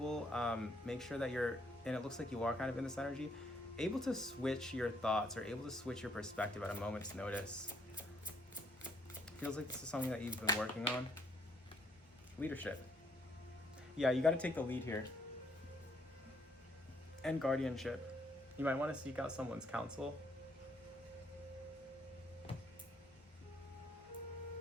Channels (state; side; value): normal; both; correlation 0.69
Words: Make sure that you're, and it looks like you are kind of in this energy, able to switch your thoughts or able to switch your perspective at a moment's notice. Feels like this is something that you've been working on. Leadership. Yeah, you got to take the lead here. And guardianship. You might want to seek out someone's counsel.